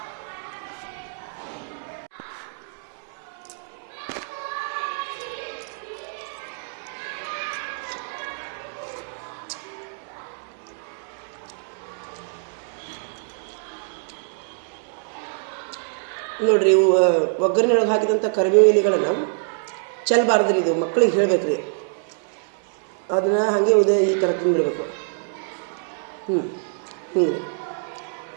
ನೋಡ್ರಿ, ಒಗ್ಗರಣೆಯೊಳಗೆ ಹಾಕಿದಂಥ ಕರಿಬೇವು ಎಲೆಗಳನ್ನು ಚೆಲ್ಲಬಾರ್ದ್ರಿ. ಇದು ಮಕ್ಕಳಿಗೆ ಹೇಳ್ಬೇಕ್ರಿ. ಅದನ್ನು ಹಾಗೆ ಈ ಥರ ತಿಂದ್ಬಿಡ್ಬೇಕು. ಹಿಂಗೆ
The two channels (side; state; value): left; silent; digital silence